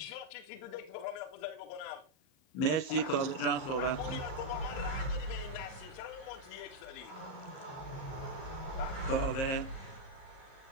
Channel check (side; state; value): right; late; 38 ms